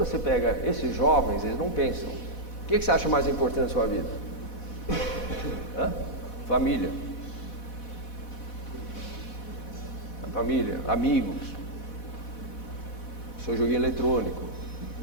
pega esses jovens, eles não pensam. O que você acha mais importante na sua vida? Família. A família, amigos, seu joguinho eletrônico.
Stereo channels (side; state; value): right; late; 4.1 ms